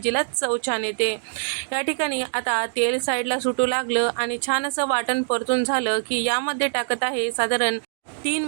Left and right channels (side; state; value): left; silent; digital silence